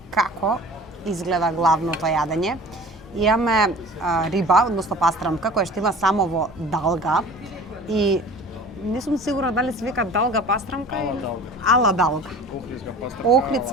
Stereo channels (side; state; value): both; normal; correlation 0.42